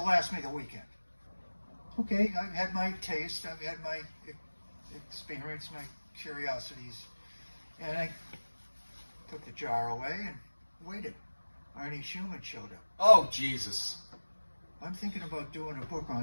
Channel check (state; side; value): inverted; both; correlation -1.00